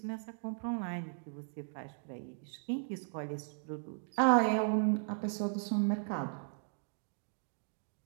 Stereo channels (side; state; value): left; silent; digital silence